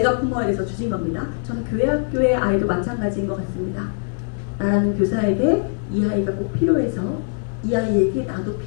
품어야 돼서 주신 겁니다. 저는 교회 학교의 아이도 마찬가지인 것 같습니다. 나라는 교사에게 이 아이가 꼭 필요해서 이 아이에게 나도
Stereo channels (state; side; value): silent; right; digital silence